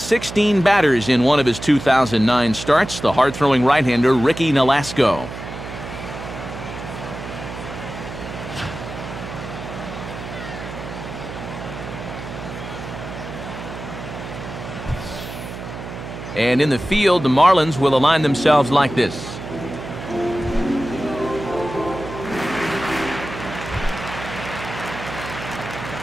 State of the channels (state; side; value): noise; right; hum, 10 dB below the sound